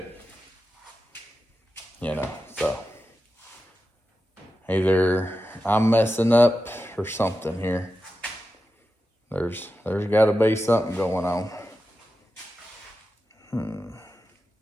You know, so either I'm messing up or something here. There's got to be something going on.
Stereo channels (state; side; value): normal; both; correlation 0.91